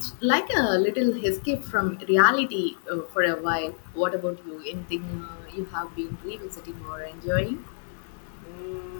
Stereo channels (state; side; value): silent; right; digital silence